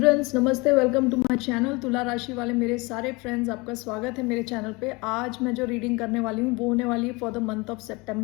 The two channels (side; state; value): right; quieter; 25.7 dB